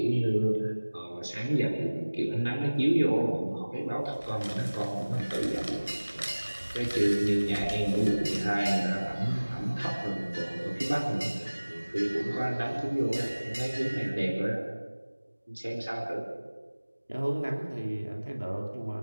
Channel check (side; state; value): both; inverted; correlation -1.00